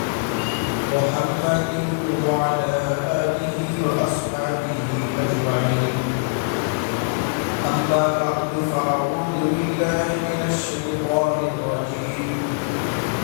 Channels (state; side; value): quieter; right; 37.3 dB